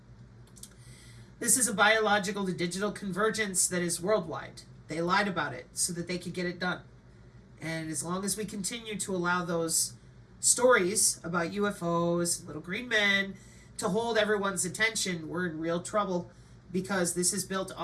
This is a biological to digital convergence that is worldwide. They lied about it so that they could get it done. And as long as we continue to allow those stories about UFOs, little green men, to hold everyone's attention, we're in real trouble, because this is built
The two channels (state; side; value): identical; both; correlation 1.00